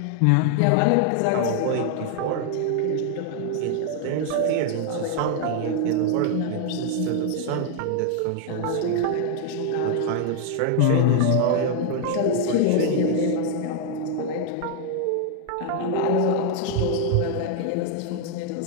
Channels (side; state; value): both; different; correlation 0.00